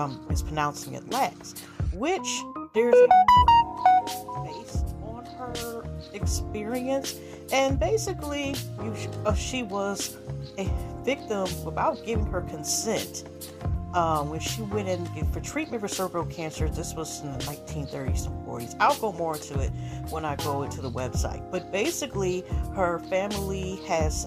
mispronouncing it. Lax, which there's a based on her experience. And basically, she was a victim without giving her consent. When she went in for treatment for cervical cancer, this was in the 1930s and 40s. I'll go more into it when I go into the website. But basically, her family has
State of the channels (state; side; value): identical; both; correlation 1.00